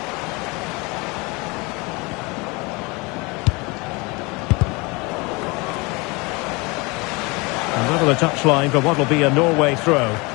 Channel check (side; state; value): right; quieter; 26.5 dB